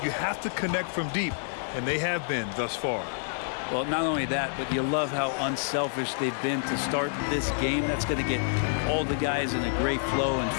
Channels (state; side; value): silent; right; digital silence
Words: you have to connect from deep, and they have been thus far. Well, not only that, but you love how unselfish they've been to start this game. That's going to get all the guys in a great flow and